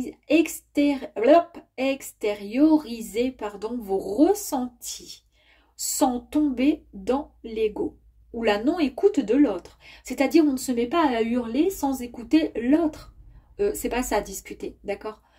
vos ressentis sans tomber dans l'ego ou la non-écoute de l'autre. C'est-à-dire, on ne se met pas à hurler sans écouter l'autre. C'est pas ça, discuter, d'accord?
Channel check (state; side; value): identical; both; correlation 1.00